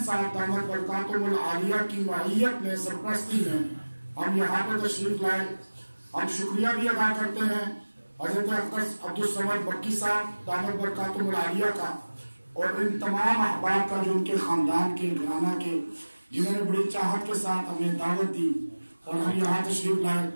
صاحب دعوت برکاتہم العالیہ کی معیت میں، سرپرستی میں ہم یہاں پہ تشریف لائے۔ ہم شکریہ بھی ادا کرتے ہیں حضرت اقدس عبدالصمد مکی صاحب دعوت برکاتہم العالیہ کا اور ان تمام احباب کا جو ان کے خاندان کے گھرانہ کے، جنہوں نے بڑی چاہت کے ساتھ ہمیں دعوت دی اور ہم یہاں تشریف لائے۔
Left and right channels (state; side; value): inverted; both; correlation -1.00